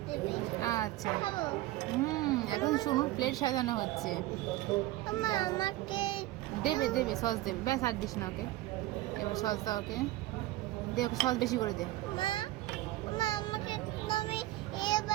দেবে। আচ্ছা খাবো। এখন সোনুর প্লেট সাজানো হচ্ছে। আমাকে দেবে দেবে সস দেবে, ব্যাস আর দিস না ওকে। এবার সস দাও ওকে, দে ওকে সস বেশি করে দে। মা মা আমাকে তুমি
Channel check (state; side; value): quieter; left; 16.9 dB